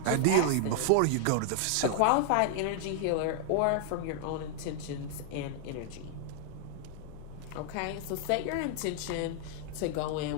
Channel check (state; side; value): different; both; correlation 0.00